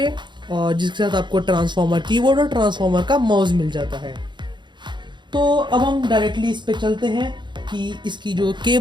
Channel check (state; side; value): late; left; 0.22 ms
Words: और जिसके साथ आपको ट्रांसफॉर्मर कीबोर्ड और ट्रांसफॉर्मर का माउस मिल जाता है। तो अब हम डायरेक्टली इस पे चलते हैं कि इसकी जो